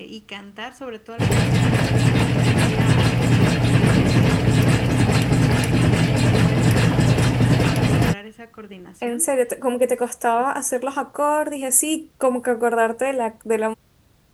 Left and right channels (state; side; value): identical; both; correlation 1.00